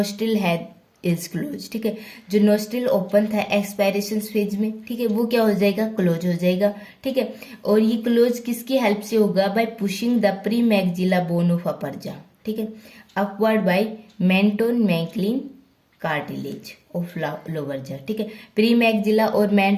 है इज क्लोज, ठीक है। जो नोस्ट्रिल ओपन था एक्सपायरेशन फेज में, ठीक है, वो क्या हो जाएगा, क्लोज हो जाएगा, ठीक है। और ये क्लोज किसकी हेल्प से होगा, by pushing the premaxilla bone of upper jaw, ठीक है, upward by mentomeckelian cartilage of lower jaw, ठीक है। प्री मैक्सिला और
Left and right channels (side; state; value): both; identical; correlation 1.00